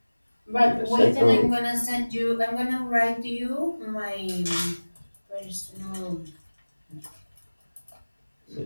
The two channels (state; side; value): inverted; both; correlation -1.00